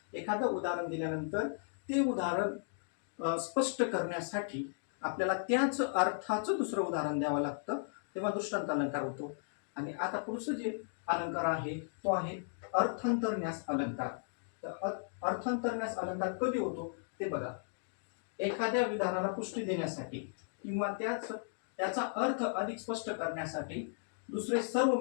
एखादं उदाहरण दिल्यानंतर ते उदाहरण स्पष्ट करण्यासाठी आपल्याला त्याच अर्थाचं दुसरं उदाहरण द्यावं लागतं तेव्हा दृष्टांत अलंकार होतो. आणि आता पुढचं जे अलंकार आहे तो आहे अर्थांतरन्यास अलंकार. तर अर्थांतरन्यास अलंकार कधी होतो ते बघा. एखाद्या विधानाला पुष्टी देण्यासाठी किंवा त्याचा अर्थ अधिक स्पष्ट करण्यासाठी दुसरे सर्व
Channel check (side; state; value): right; silent; digital silence